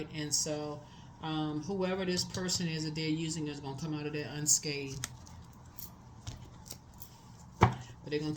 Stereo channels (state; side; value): identical; both; correlation 1.00